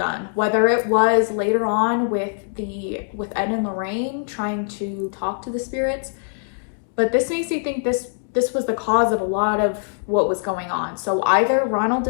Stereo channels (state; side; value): silent; right; digital silence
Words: whether it was later on with Ed and Lorraine trying to talk to the spirits, but this makes me think this was the cause of a lot of what was going on. So either Ronald